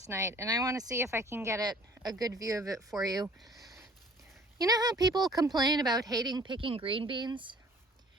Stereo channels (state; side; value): normal; both; correlation 0.54